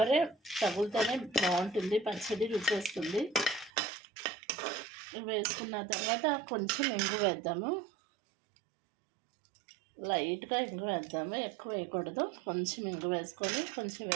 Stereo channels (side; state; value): left; drops out; at 3.7 s